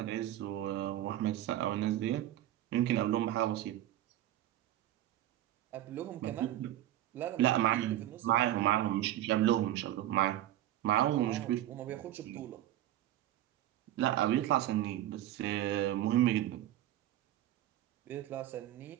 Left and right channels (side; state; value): left; quieter; 13.4 dB